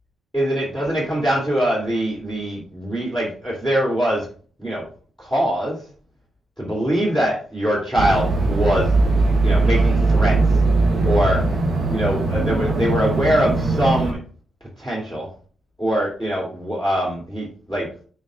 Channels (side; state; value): both; normal; correlation 0.86